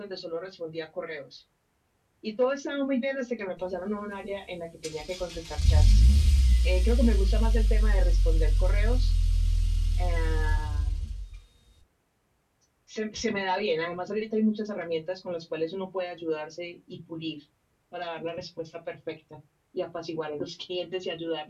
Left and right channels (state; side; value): identical; both; correlation 1.00